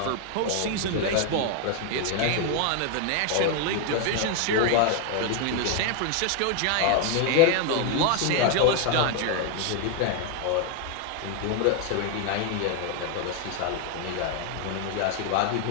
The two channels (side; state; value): both; different; correlation 0.01